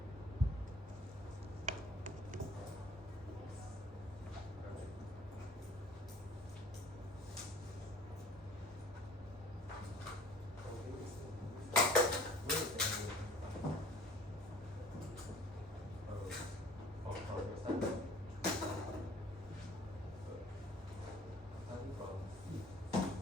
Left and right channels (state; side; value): normal; both; correlation 0.51